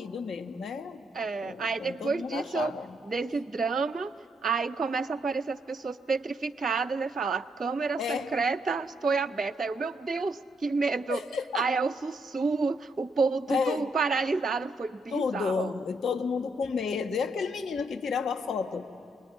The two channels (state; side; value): normal; both; correlation 0.76